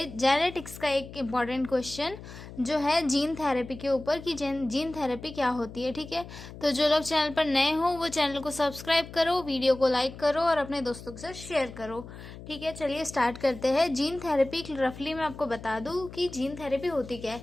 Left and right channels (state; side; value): noise; left; hum, 14 dB below the sound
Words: जेनेटिक्स का एक इम्पॉर्टेंट क्वेश्चन जो है जीन थेरेपी के ऊपर कि जीन थेरेपी क्या होती है। ठीक है, तो जो लोग चैनल पर नए हो वो चैनल को सब्सक्राइब करो, वीडियो को लाइक करो और अपने दोस्तों के साथ शेयर करो। ठीक है, चलिए स्टार्ट करते हैं। जीन थेरेपी रफली मैं आपको बता दूं कि जीन थेरेपी होती क्या है।